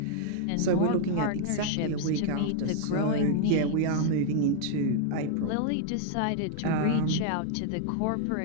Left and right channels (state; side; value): different; both; correlation 0.00